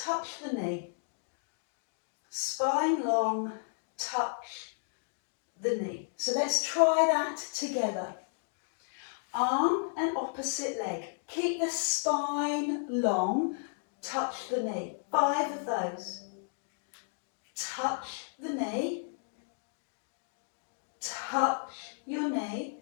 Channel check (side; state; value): right; silent; digital silence